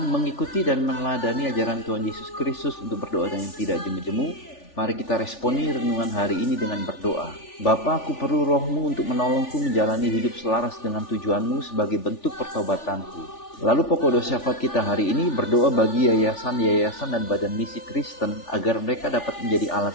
mengikuti dan meneladani ajaran Tuhan Yesus Kristus untuk berdoa dengan tidak jemu-jemu. Mari kita responi renungan hari ini dengan berdoa. Bapa, aku perlu rohmu untuk menolongku menjalani hidup selaras dengan tujuanmu sebagai bentuk pertobatanku. Lalu pokok doa syafaat kita hari ini berdoa bagi yayasan dan badan misi Kristen agar mereka dapat menjadi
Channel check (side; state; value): right; late; 3.4 ms